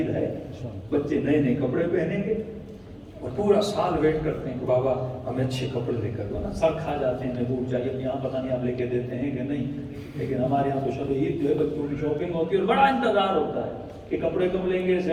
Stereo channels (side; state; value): both; identical; correlation 1.00